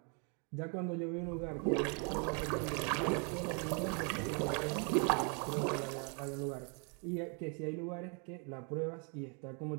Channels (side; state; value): left; quieter; 37.7 dB